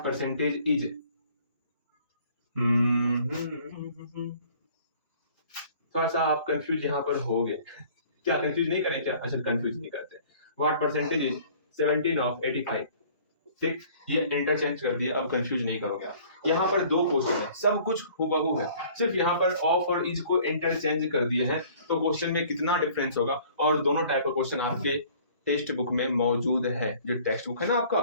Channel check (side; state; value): both; inverted; correlation -0.53